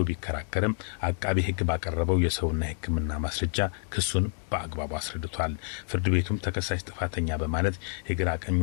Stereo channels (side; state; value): right; silent; digital silence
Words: ቢከራከርም አቃቢ ሕግ ባቀረበው የሰውና የሕክምና ማስረጃ ክሱን በአግባቡ አስረድቷል። ፍርድ ቤቱም ተከሳሽ ጥፋተኛ በማለት የግራ